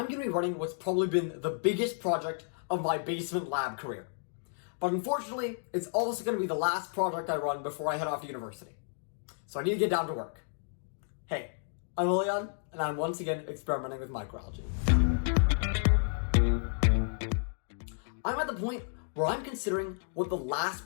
going to be running what's probably been the biggest project of my basement lab career. But unfortunately, it's also going to be the last project I run before I head off to university. So I need to get down to work. Hey, I'm Leon, and I'm once again experimenting with microalgae. I'm at the point where I'm considering what the last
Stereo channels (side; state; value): right; silent; digital silence